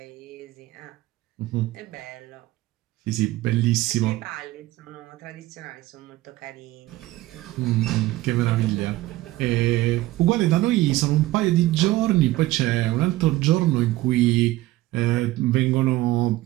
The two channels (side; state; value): left; quieter; 17.0 dB